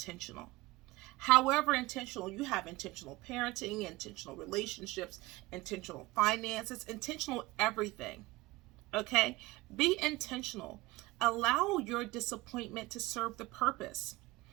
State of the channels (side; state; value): left; quieter; 20.2 dB